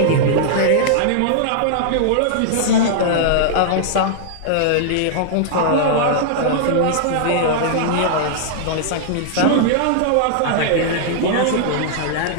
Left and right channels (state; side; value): different; both; correlation -0.01